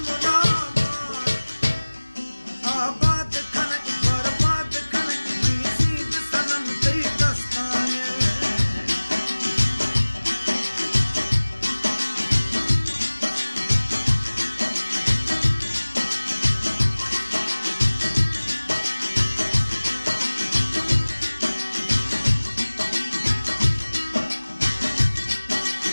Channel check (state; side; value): inverted; both; correlation -1.00